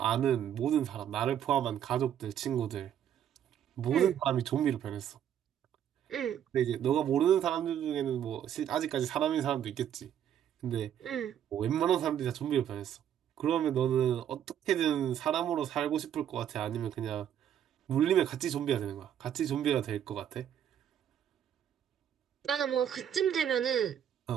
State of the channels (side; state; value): left; quieter; 9.8 dB